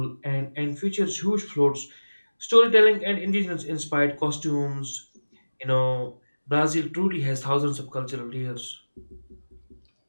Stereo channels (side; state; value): both; inverted; correlation -1.00